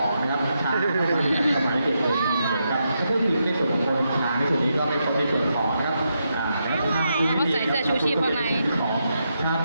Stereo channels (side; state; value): both; inverted; correlation -0.83